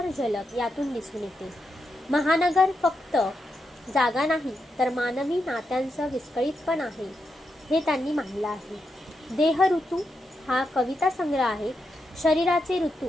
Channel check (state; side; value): normal; both; correlation 0.84